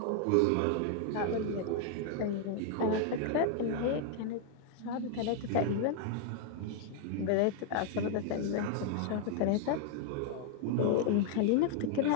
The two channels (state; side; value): different; both; correlation 0.00